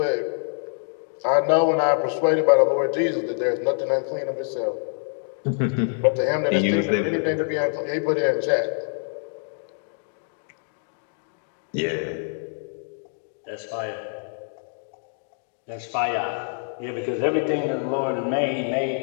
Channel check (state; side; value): silent; right; digital silence